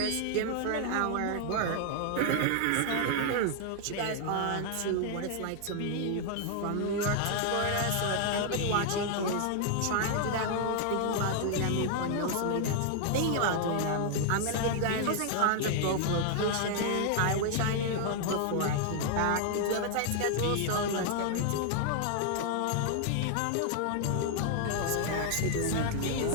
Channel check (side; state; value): both; different; correlation 0.00